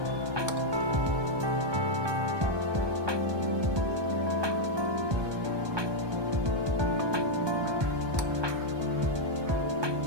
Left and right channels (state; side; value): late; left; 1.2 ms